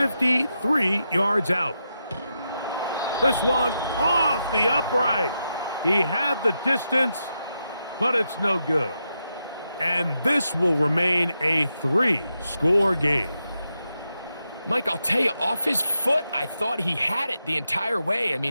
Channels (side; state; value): both; inverted; correlation -0.85